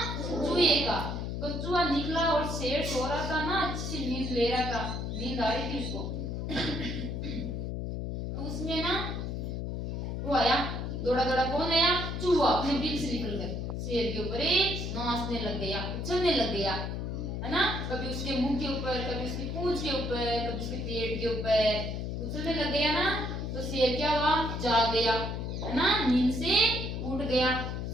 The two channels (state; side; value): noise; left; hum, 3 dB below the sound